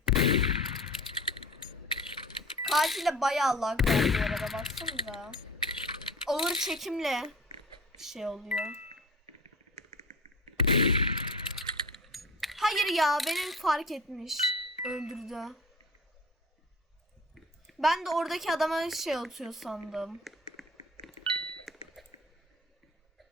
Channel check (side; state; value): both; normal; correlation 0.39